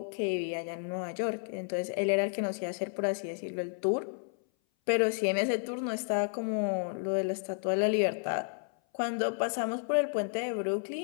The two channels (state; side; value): silent; right; 57 dB below the other